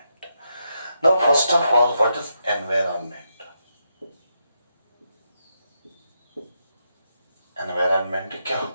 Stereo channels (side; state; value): both; inverted; correlation -0.82